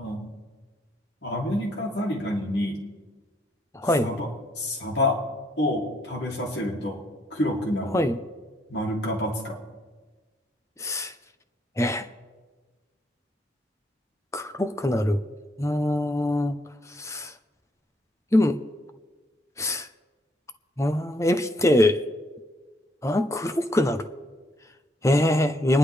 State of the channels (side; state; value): both; normal; correlation 0.71